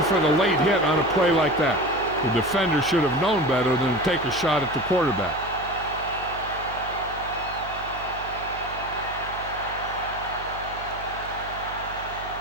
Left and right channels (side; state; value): right; noise; hum, 15 dB below the sound